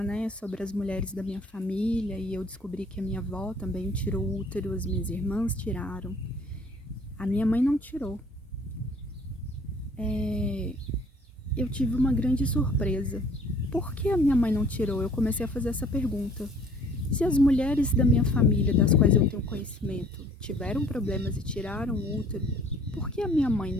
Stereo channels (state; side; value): normal; both; correlation 0.55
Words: né, sobre as mulheres da minha família, e eu descobri que a minha avó também tirou o útero, as minhas irmãs tiraram. A minha mãe não tirou. Eu tive uma grande surpresa. Por que a minha mãe não tirou? Eu comecei a fazer essa pergunta. Se as mulheres da minha família, das quais eu tenho conhecimento, tiveram problemas e tiraram o útero, por que a minha mãe